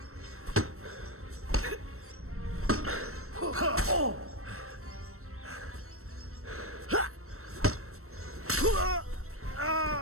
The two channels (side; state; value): left; late; 0.63 ms